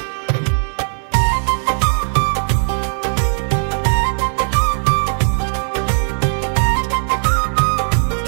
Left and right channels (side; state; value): left; silent; digital silence